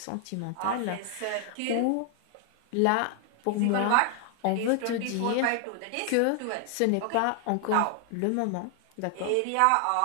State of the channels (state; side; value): different; both; correlation 0.00